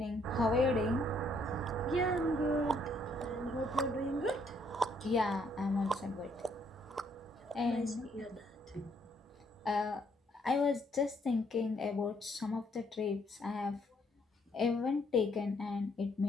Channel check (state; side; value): normal; both; correlation 0.69